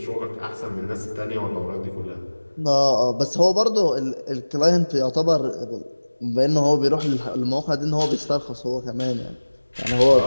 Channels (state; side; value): inverted; both; correlation -1.00